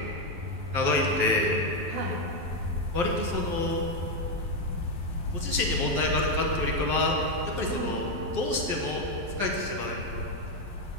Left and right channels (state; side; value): late; left; 12 ms